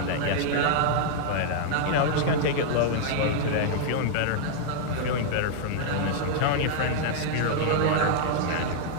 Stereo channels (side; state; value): both; different; correlation -0.01